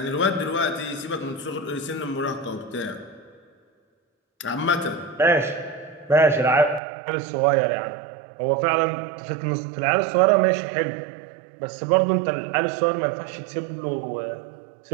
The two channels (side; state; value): left; drops out; at 6.8 s